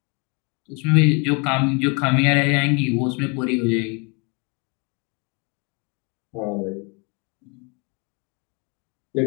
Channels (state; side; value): quieter; right; 32.6 dB